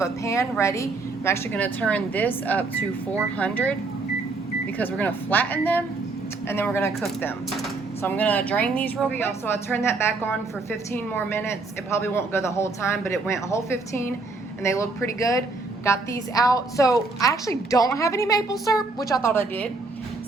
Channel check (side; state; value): left; quieter; 3.6 dB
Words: a pan ready. I'm actually gonna turn this up to 400 because we're gonna flatten them and then we're gonna cook them. So I'm gonna drain these real quick. So I turned that back on for 15 more minutes. It probably won't go the whole time, but it went a whole 15 and they look pretty good. Got these out. So I actually don't have any maple syrup, which I thought I did.